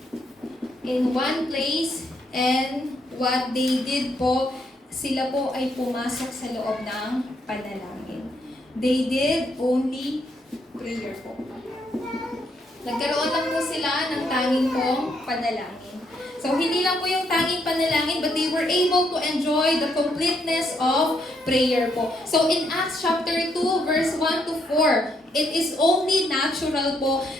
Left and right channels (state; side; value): normal; both; correlation 0.75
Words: in one place, and what they did po, sila po ay pumasok sa loob ng panalangin. They did only prayer po. Nagkaroon lang po sila ng tanging pong panalangin. So, hindi lang po yung tanging panalangin, but they were able to enjoy the completeness of prayer po. So, in Acts chapter 2, verse 1 to 4, it is only natural po